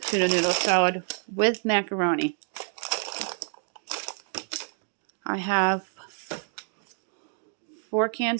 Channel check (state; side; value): silent; left; 57 dB below the other